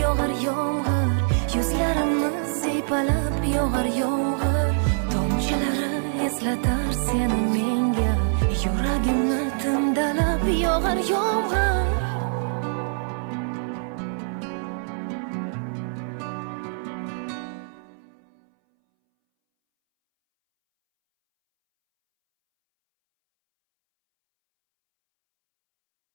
yog'ar yomg'ir, yuzlarimni siypalab yog'ar yomg'ir. Tomchilari eslatar seni menga, yuragimni timdalab yog'ar yomg'ir.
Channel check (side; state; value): left; silent; 62 dB below the other